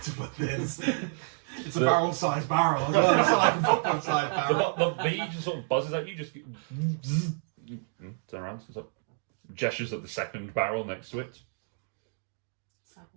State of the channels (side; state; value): left; silent; digital silence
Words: put this. It's a barrel-sized barrel as well. It's not like a football-sized barrel. The bee just sort of buzzes at you, just turn around, sort of gestures at the second barrel next to it.